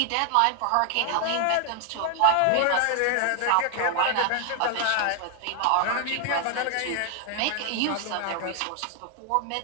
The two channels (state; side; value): different; both; correlation 0.00